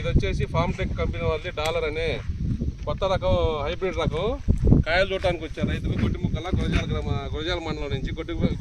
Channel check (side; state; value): both; identical; correlation 1.00